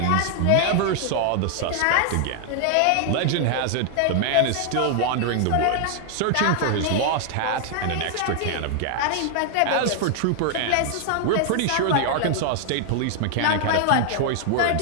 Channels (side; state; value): both; different; correlation 0.00